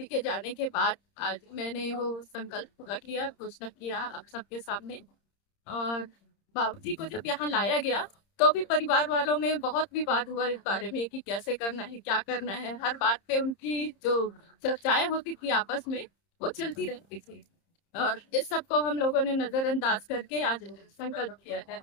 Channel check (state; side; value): late; right; 30 ms